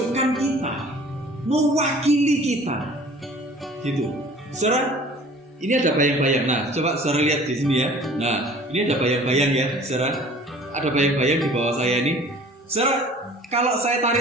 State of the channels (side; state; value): both; normal; correlation 0.48